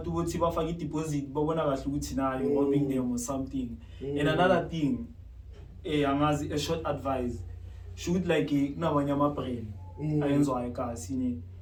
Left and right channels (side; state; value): both; identical; correlation 1.00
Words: bothi bafaka i-deposit babona kahle ukuthi nayo robbing them or something. And another thing angazi a short advice should like kunabanye ama-brand ayenzwayo kasi